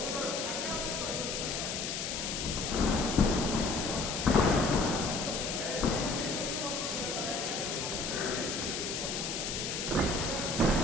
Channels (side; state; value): left; noise; hiss, 3 dB below the sound